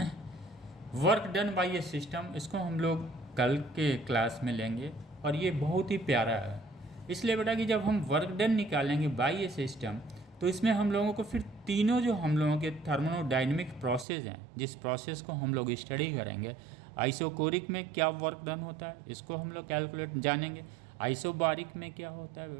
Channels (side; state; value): left; drops out; at 14.1 s